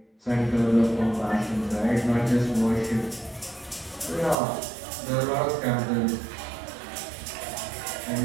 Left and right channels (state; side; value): drops out; left; at 4.4 s